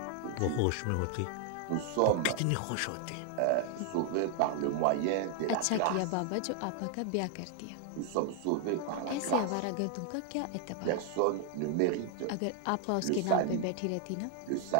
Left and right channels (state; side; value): different; both; correlation 0.00